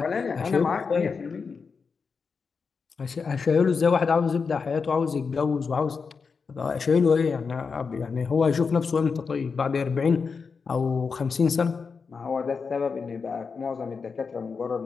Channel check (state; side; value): quieter; right; 5.2 dB